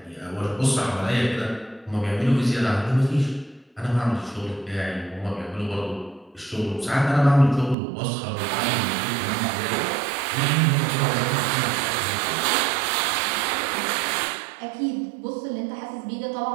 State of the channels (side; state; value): left; drops out; at 7.8 s